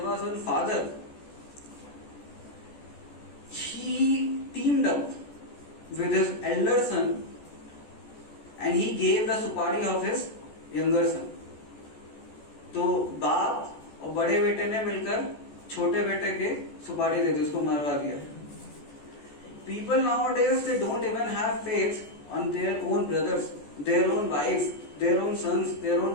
one father. He teamed up with his elder son and he gave the supari of his younger son. तो बाप और बड़े बेटे ने मिलकर छोटे बेटे के सुपारी दे दी, उसको मरवा दिया. People nowadays, they don't even have faith on their own brothers, their own wives, their own sons, their own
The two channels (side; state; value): right; late; 14 ms